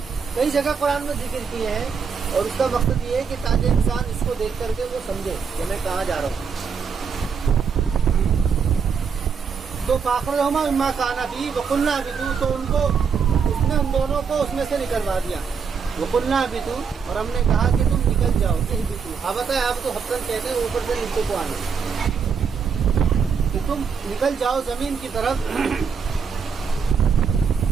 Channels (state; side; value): quieter; left; 6.2 dB